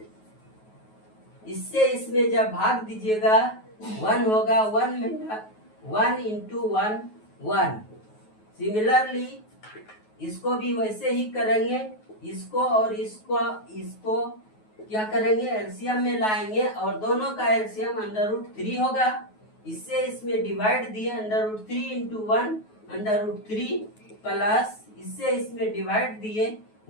इससे इसमें जब भाग दीजिएगा 1 होगा। 1 इंटू 1 सिमिलरली इसको भी वैसे ही करेंगे। इसको और इसको क्या करेंगे, एलसीएम में लाएंगे और दोनों का एलसीएम √3 होगा। इससे इसमें डिवाइड दिए √3 इंटू 1 √3 प्लस इससे इसमें डिवाइड दिए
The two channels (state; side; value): late; right; 9.3 ms